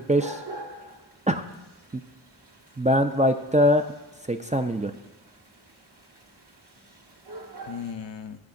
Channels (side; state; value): both; normal; correlation 0.46